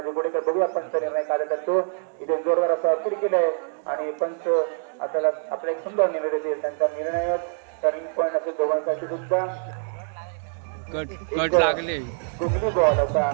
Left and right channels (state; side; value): silent; left; digital silence